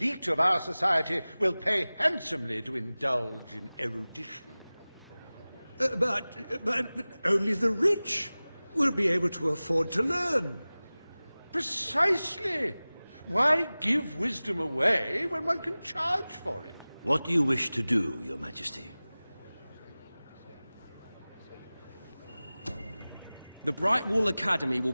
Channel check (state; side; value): inverted; both; correlation -0.98